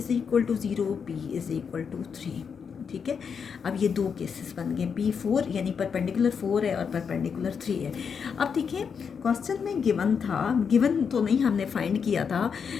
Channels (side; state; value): right; quieter; 6.5 dB